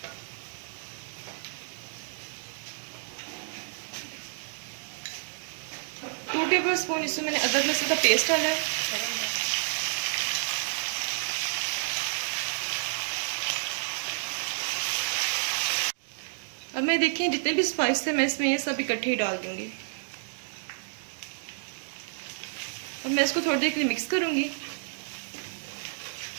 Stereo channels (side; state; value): left; silent; digital silence